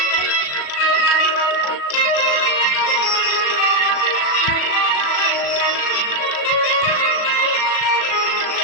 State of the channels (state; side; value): late; right; 37 ms